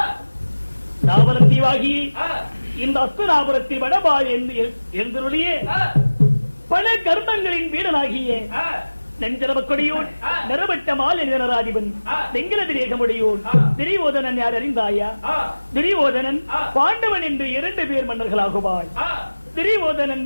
நாவலம் தீவாகி இந்த அஸ்தனாபுரத்தில் வடபால் எழுந்தருளிய பல கர்மங்களின் வீடனாகிய நெஞ்சரவக்கொடியோன் நரவட்ட மால் நராதிபன் வெங்கலதிரேகமுடையோன் துரியோதனன் யார் அறிந்தாயா? துரியோதனன் பாண்டவன் என்று 2 பேர் மன்னர்களாகுவாய். துரியோதனன்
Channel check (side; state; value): both; inverted; correlation -1.00